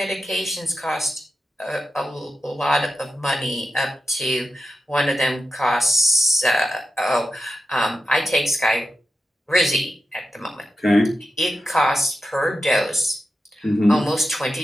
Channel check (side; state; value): both; normal; correlation 0.91